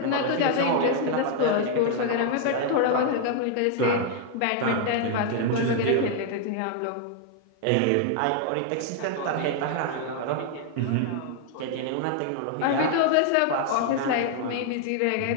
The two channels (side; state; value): both; different; correlation 0.00